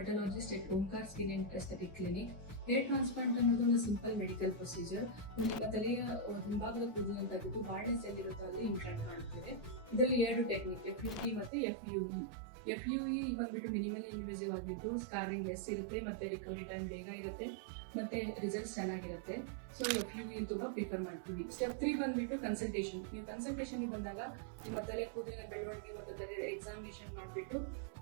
at Omkar skin and aesthetic clinic. Hair transplant ಅನ್ನೋದು ಒಂದು ಸಿಂಪಲ್ ಮೆಡಿಕಲ್ ಪ್ರೊಸೀಜರ್. ನಿಮ್ಮ ತಲೆಯ ಹಿಂಭಾಗದ ಕೂದಲನ್ನು ತೆಗೆದು ಬಾರ್ಡ್ನೆಸ್ ಎಲ್ಲಿರುತ್ತೋ ಅಲ್ಲಿ ಇಂಪ್ಲಾಂಟ್ ಮಾಡುತ್ತೇವೆ. ಇದರಲ್ಲಿ 2 ಟೆಕ್ನಿಕ್, FUE ಮತ್ತೆ FUE. FUE ಬಂದ್ಬಿಟ್ಟು ಮಿನಿಮಲಿ ಇನ್ವೇಸಿವ್ ಆಗಿದ್ದು ಸ್ಕಾರಿಂಗ್ ಲೆಸ್ ಇರುತ್ತೆ ಮತ್ತೆ ರಿಕವರಿ ಟೈಮ್ ಬೇಗ ಇರುತ್ತೆ ಮತ್ತೆ ರಿಸಲ್ಟ್ಸ್ ಚೆನ್ನಾಗಿರುತ್ತೆ. ಸೊ FUE ತುಂಬಾ ಪ್ರಿಫರ್ ಮಾಡ್ತೀವಿ. ಸ್ಟೆಪ್ 3 ಬಂದ್ಬಿಟ್ಟು ಕನ್ಸಲ್ಟೇಷನ್. ನೀವು ಕನ್ಸಲ್ಟೇಷನ್ ಬಂದಾಗ ನಿಮ್ಮ ತಲೆ ಕೂದಲಿನ ಬೆಳವಣಿಗೆ ಮತ್ತು ತಲೆ ಎಕ್ಸಾಮಿನೇಷನ್ ಮಾಡಿಬಿಟ್ಟು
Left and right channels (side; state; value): left; drops out; at 11.5 s